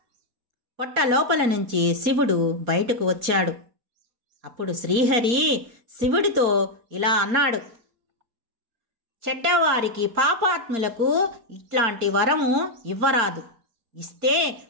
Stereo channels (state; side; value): late; left; 4.3 ms